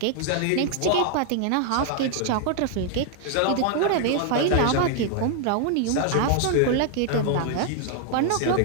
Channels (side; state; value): both; different; correlation 0.00